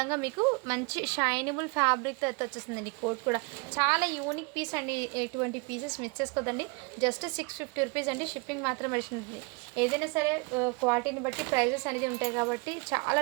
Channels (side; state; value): left; quieter; 30.4 dB